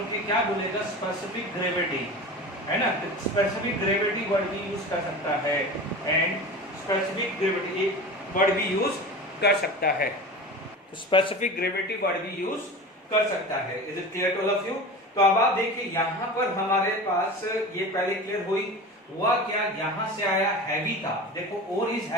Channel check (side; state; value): both; normal; correlation 0.32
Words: के क्या बोलेगा? स्पेसिफिक ग्रेविटी, है ना। स्पेसिफिक ग्रेविटी वर्ड भी यूज कर सकता है एंड स्पेसिफिक ग्रेविटी वर्ड भी यूज कर सकता है, तो स्पेसिफिक ग्रेविटी वर्ड भी यूज कर सकता है। Is it clear to all of you? तो अब आप देखिए यहाँ पर हमारे पास ये पहले क्लियर हुआ क्या? यहाँ से आया हैवी था, देखो और इज